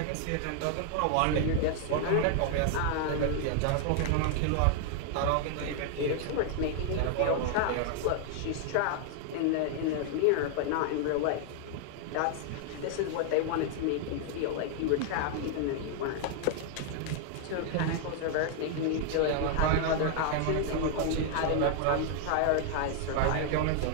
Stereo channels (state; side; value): different; both; correlation 0.00